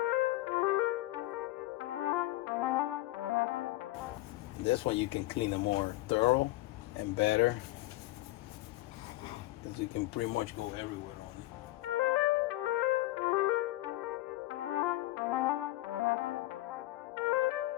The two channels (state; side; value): quieter; right; 18.0 dB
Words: This one you can clean it more thorough and better, because you can pretty much go everywhere on it.